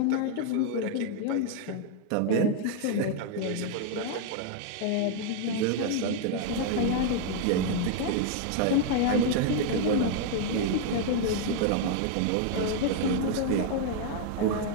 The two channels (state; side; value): different; both; correlation 0.00